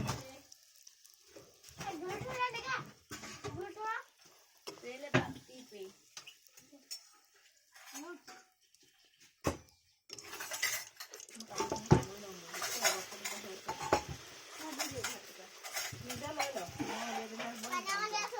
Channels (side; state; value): both; identical; correlation 1.00